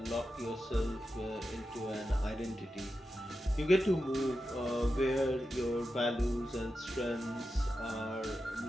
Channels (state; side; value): normal; both; correlation 0.90